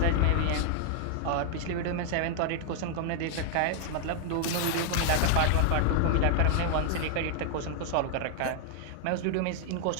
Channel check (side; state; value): both; different; correlation 0.00